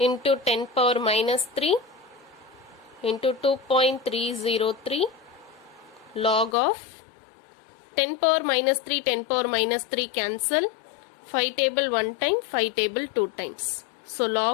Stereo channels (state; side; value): drops out; right; at 6.6 s